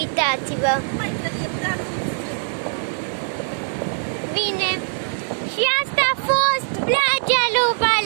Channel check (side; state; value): left; silent; 64 dB below the other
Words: Mai trebuie dat Bine. Și asta a fost plajea lui